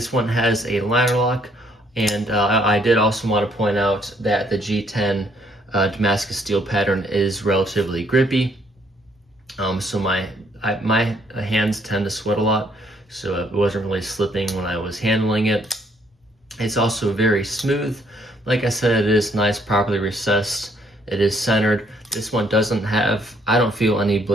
one has a liner lock, and I did also want to point out that the G10 Damascus steel pattern is relatively grippy. So my hands tend to sweat a lot, so it wasn't really slipping when I was handling it. It's also very smooth. Like I said, it is nice, properly recessed. It is centered. This one doesn't have, I don't feel any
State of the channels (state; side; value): normal; both; correlation 0.67